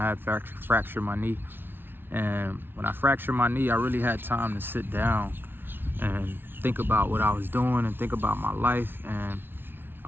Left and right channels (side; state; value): left; late; 0.10 ms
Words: had fractured my knee. And when I fractured my knee, I really had time to sit down and think about what I was doing and think about my life. And